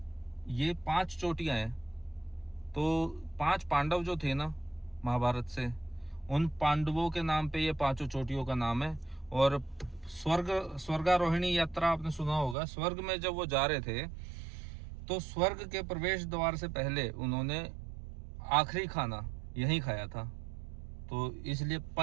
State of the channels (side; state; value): left; drops out; at 12.6 s